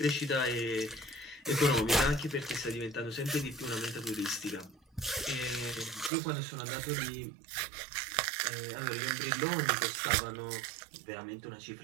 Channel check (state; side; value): drops out; left; at 6.1 s